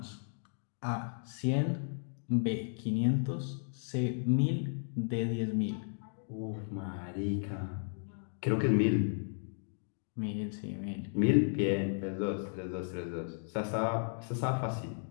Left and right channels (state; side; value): silent; right; digital silence